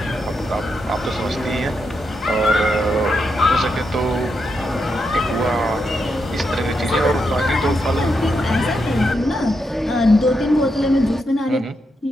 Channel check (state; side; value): normal; both; correlation 0.83